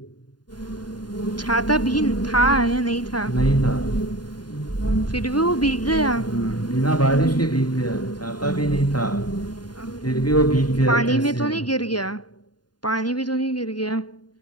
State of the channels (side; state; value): right; late; 0.70 ms